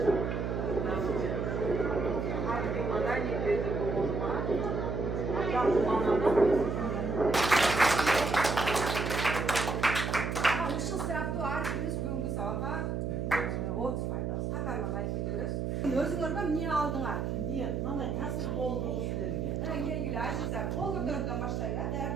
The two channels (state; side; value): noise; right; hum, 1 dB below the sound